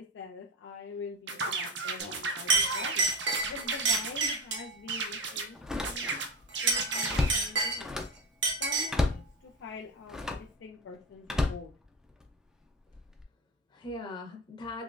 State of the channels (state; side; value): normal; both; correlation 0.24